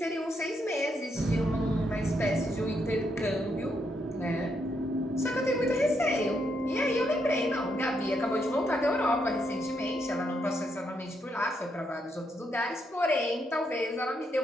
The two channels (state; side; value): normal; both; correlation 0.78